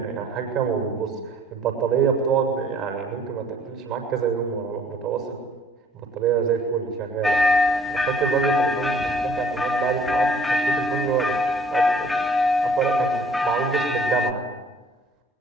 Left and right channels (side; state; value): both; normal; correlation 0.57